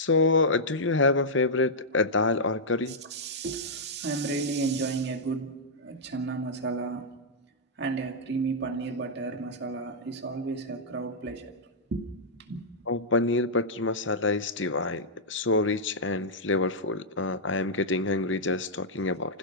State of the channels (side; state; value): both; normal; correlation -0.08